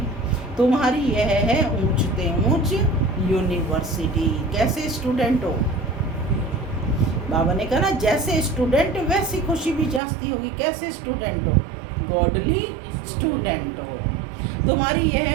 तुम्हारी यह है ऊंचते ऊंच यूनिवर्सिटी। कैसे स्टूडेंट हो, बाबा ने कहा ना, जैसे स्टूडेंट वैसी खुशी भी जास्ती होगी। कैसे स्टूडेंट हो, गॉडली स्टूडेंट हो। तुम्हारी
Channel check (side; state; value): left; drops out; at 10.0 s